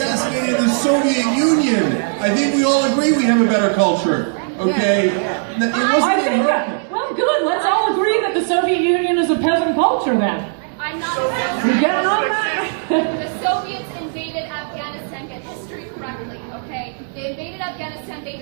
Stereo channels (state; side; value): silent; left; 63 dB below the other